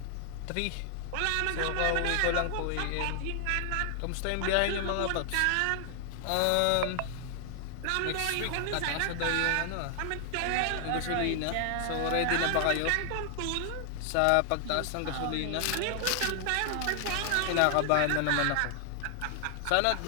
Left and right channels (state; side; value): different; both; correlation 0.00